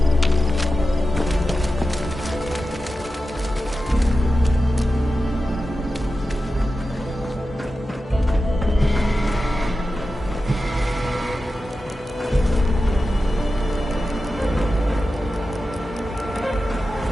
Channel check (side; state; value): both; normal; correlation 0.92